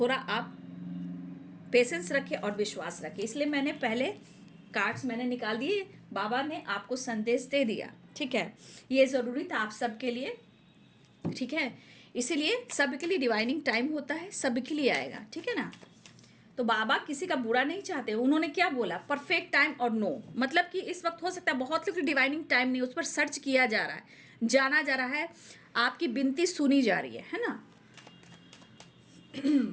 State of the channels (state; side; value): identical; both; correlation 1.00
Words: आप पेशेंस रखें और विश्वास रखें। इसलिए मैंने पहले कार्ड्स मैंने निकाल दिए, बाबा ने आपको संदेश दे दिया, ठीक है। ये ज़रूरी था आप सबके लिए, ठीक है। इसीलिए सबके लिए डिवाइनिंग टाइम होता है, सबके लिए आएगा, ठीक है ना। तो बाबा किसी का बुरा नहीं चाहते। उन्होंने क्या बोला, परफेक्ट टाइम और नो, मतलब कि इस वक्त हो सकता है बहुत लोग डिवाइनिंग टाइम नहीं, उस पर सर्च किया जा रहा है, जाना जा रहा है, आपकी विनती सुनी जा रही है ना।